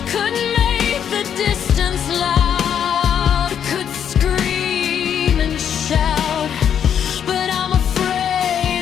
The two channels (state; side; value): quieter; right; 8.7 dB